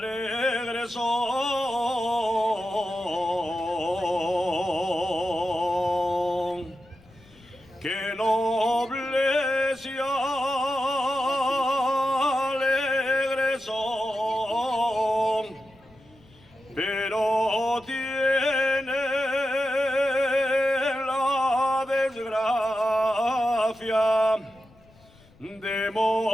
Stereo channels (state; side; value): noise; left; rumble, 27 dB below the sound